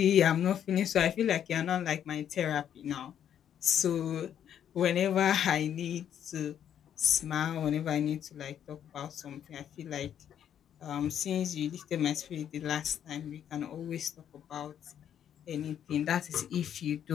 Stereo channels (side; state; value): right; quieter; 9.5 dB